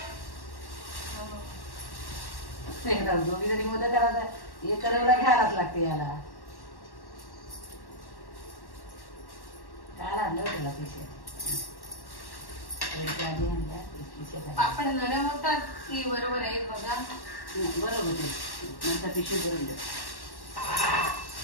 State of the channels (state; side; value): late; right; 1.1 ms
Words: दोघी जरी मोदक करायचा हे करायला घ्यायलाच लागते याला. काय आणलं त्याला पैसे आधी आणल्या. पापड नरम होतात की बरोबर आहे बघा. बरोबर होते नंतर पिशवी भरून द्या.